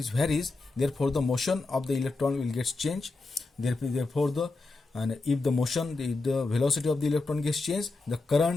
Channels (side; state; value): right; quieter; 3.5 dB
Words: varies, therefore the motion of the electron will get changed. Therefore if the motion, the velocity of the electron gets changed, the